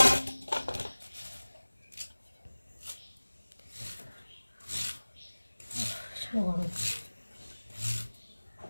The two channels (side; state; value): both; inverted; correlation -1.00